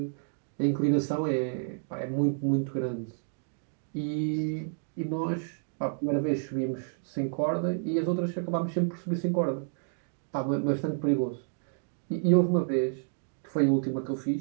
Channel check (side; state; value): left; silent; digital silence